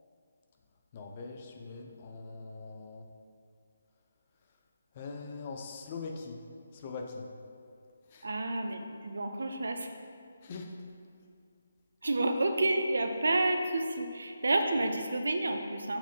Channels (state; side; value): inverted; both; correlation -0.90